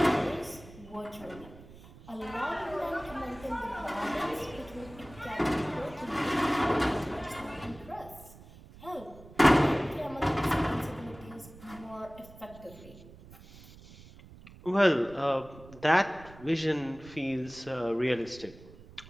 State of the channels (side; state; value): right; noise; rumble, 20 dB below the sound